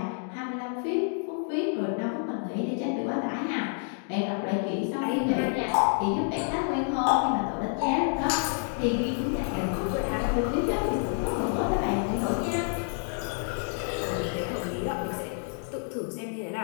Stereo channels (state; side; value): silent; right; 56 dB below the other